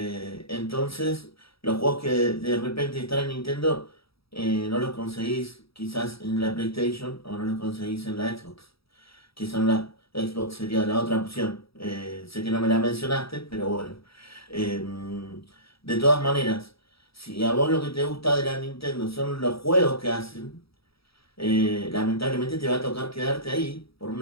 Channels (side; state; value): right; late; 0.76 ms